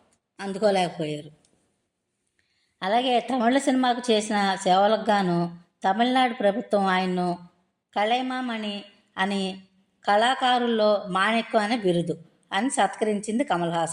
అందుకోలేకపోయారు. అలాగే తమిళ సినిమాకు చేసిన సేవలకు గాను తమిళనాడు ప్రభుత్వం ఆయన్ను కళైమామణి అని, కళాకారుల్లో మాణిక్యం అనే బిరుదు అని సత్కరించింది కమల్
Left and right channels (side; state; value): both; identical; correlation 1.00